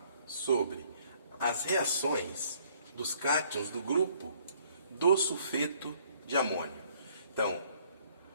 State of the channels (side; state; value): both; inverted; correlation -0.62